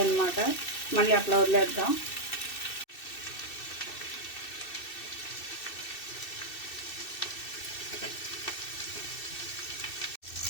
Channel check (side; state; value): right; late; 2.6 ms